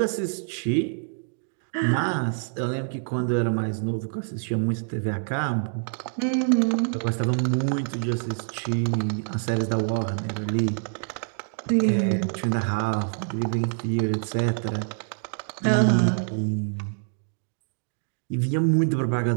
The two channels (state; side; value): silent; left; digital silence